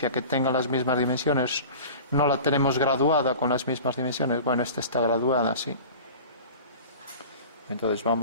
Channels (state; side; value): inverted; both; correlation -0.38